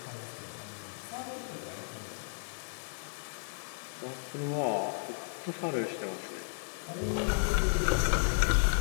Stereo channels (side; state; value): right; silent; digital silence